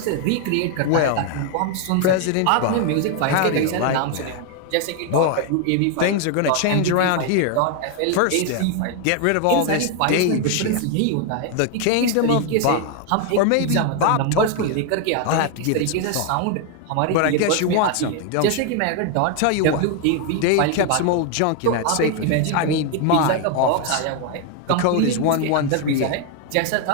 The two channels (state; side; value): different; both; correlation 0.01